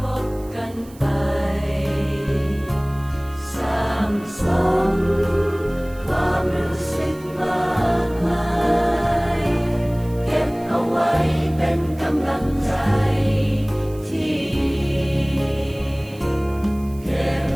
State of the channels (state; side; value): noise; right; hiss, 24 dB below the sound